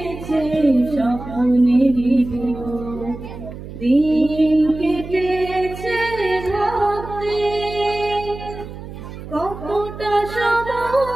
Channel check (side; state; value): right; noise; hum, 12 dB below the sound